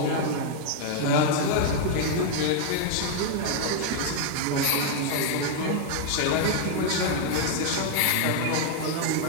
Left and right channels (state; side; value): different; both; correlation 0.00